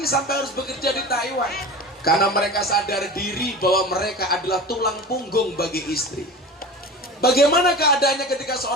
sampai harus bekerja di Taiwan. Karena mereka sadar diri bahwa mereka adalah tulang punggung bagi istri. Bagaimana keadaannya ketika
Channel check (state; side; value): normal; both; correlation 0.33